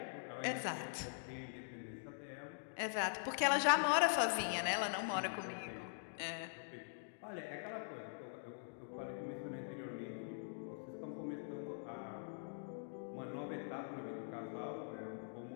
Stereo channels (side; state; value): right; silent; digital silence